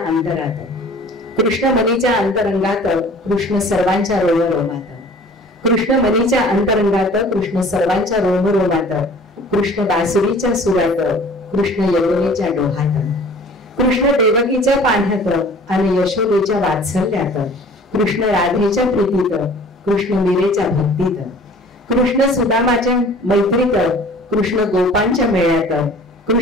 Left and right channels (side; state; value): both; normal; correlation 0.48